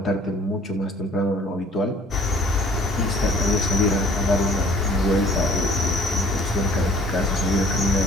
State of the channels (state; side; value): normal; both; correlation 0.52